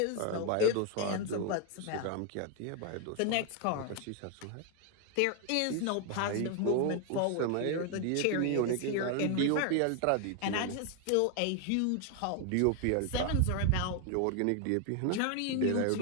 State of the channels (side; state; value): both; different; correlation 0.01